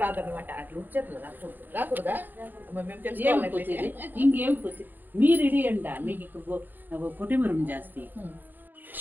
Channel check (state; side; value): late; left; 0.088 ms